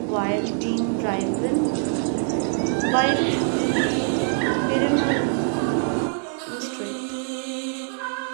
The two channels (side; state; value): left; silent; 63 dB below the other